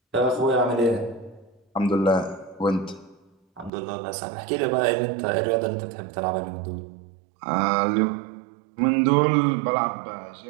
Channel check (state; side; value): drops out; left; at 3.7 s